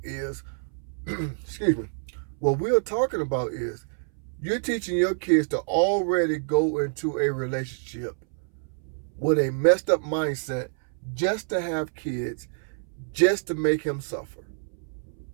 is, excuse me, what we are talking about is you're teaching your kids to already go into a relationship with a messed up mindset just to have kids, just to make him suffer.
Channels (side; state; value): left; silent; 60 dB below the other